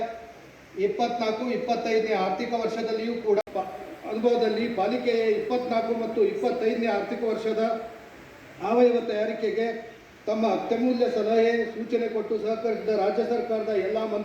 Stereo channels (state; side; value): identical; both; correlation 1.00